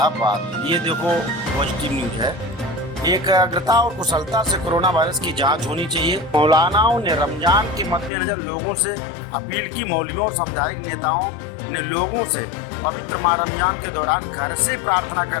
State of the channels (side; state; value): right; drops out; at 8.1 s